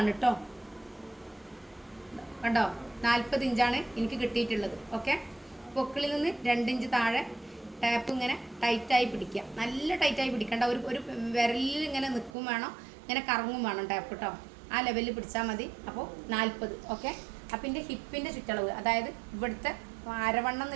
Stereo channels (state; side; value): drops out; left; at 12.3 s